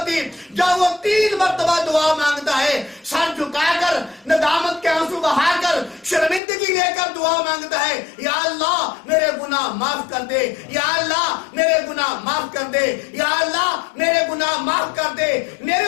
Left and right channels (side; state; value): right; drops out; at 6.4 s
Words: جب وہ 3 مرتبہ دعا مانگتا ہے، سر جھکا کر، ندامت کے آنسو بہا کر، شرمندگی لے کر دعا مانگتا ہے، یا اللہ میرے گناہ معاف کر دے، یا اللہ میرے گناہ معاف کر دے، یا اللہ میرے گناہ معاف کر دے۔ میرے